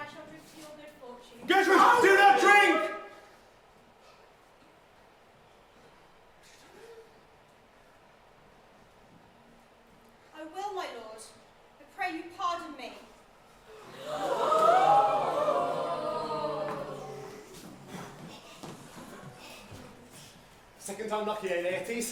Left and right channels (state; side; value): identical; both; correlation 1.00